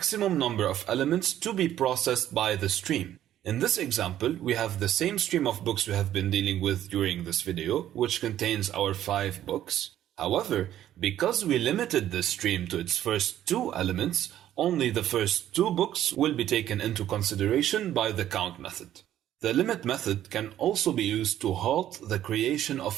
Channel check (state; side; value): quieter; left; 12.0 dB